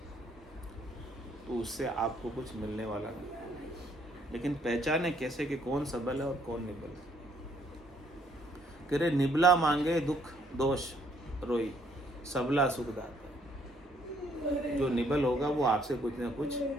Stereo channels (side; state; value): both; normal; correlation 0.67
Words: तो उससे आपको कुछ मिलने वाला नहीं, लेकिन पहचाने कैसे कि कौन सबल है और कौन निबल है। कह रहे निबला मांगे दुख दोष रोई सबला सुख दाता। जो निबल होगा वो आपसे कुछ ना कुछ